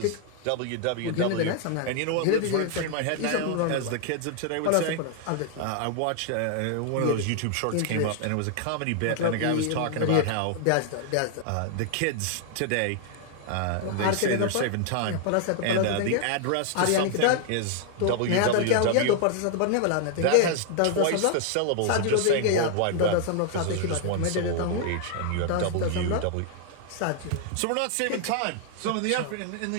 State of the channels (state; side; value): different; both; correlation 0.00